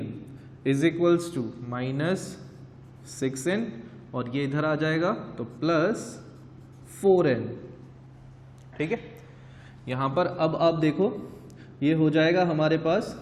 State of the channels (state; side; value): identical; both; correlation 1.00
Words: is equals to -6n, और ये इधर आ जाएगा तो प्लस 4n। ठीक है, यहाँ पर अब आप देखो ये हो जाएगा हमारे पास